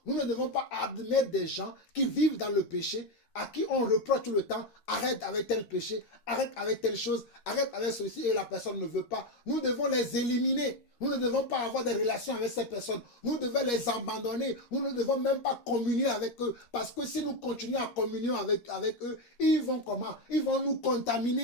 nous ne devons pas admettre des gens qui vivent dans le péché, à qui on reproche tout le temps, arrête avec tel péché, arrête avec telle chose, arrête avec ceci, et la personne ne veut pas. Nous devons les éliminer. Nous ne devons pas avoir des relations avec ces personnes. Nous devons les abandonner. Nous ne devons même pas communier avec eux. Parce que si nous continuons à communier avec eux, ils vont comment? Ils vont nous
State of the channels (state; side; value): late; right; 13 ms